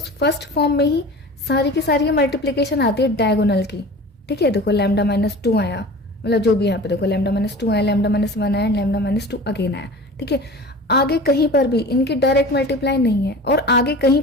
फर्स्ट फॉर्म में ही सारी की सारी मल्टीप्लीकेशन आती है डायगोनल की, ठीक है। देखो लैम्डा माइनस 2 आया, मतलब जो भी यहाँ पे देखो लैम्डा माइनस 2 आया, लैम्डा माइनस 1 आया, लैम्डा माइनस 2 अगेन आया, ठीक है। आगे कहीं पर भी इनकी डायरेक्ट मल्टीप्लाई नहीं है, और आगे कहीं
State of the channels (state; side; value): normal; both; correlation 0.37